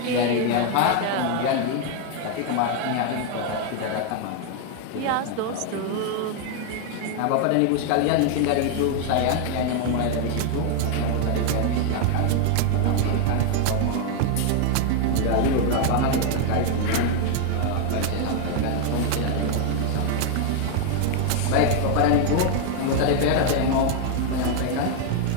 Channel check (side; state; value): both; different; correlation 0.00